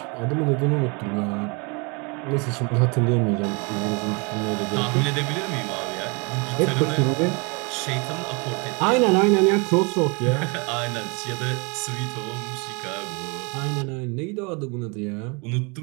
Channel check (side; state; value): left; quieter; 31.1 dB